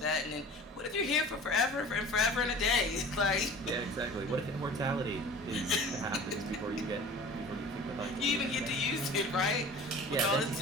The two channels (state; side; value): normal; both; correlation 0.41